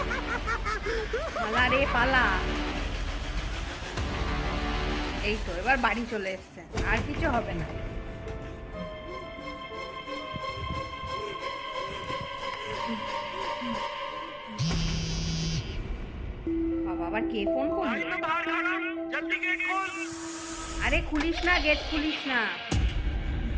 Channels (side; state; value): both; identical; correlation 1.00